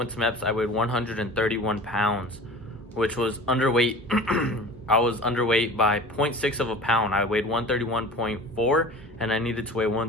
to MEPS, I weighed 131 pounds, which was underweight. I was underweight by 0.6 of a pound. I weighed 131.4 and I needed to weigh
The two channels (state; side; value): normal; both; correlation 0.39